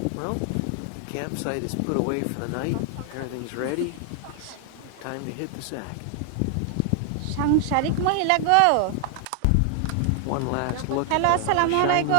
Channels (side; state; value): both; different; correlation 0.00